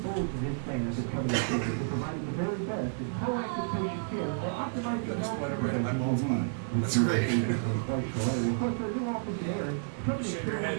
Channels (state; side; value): silent; left; digital silence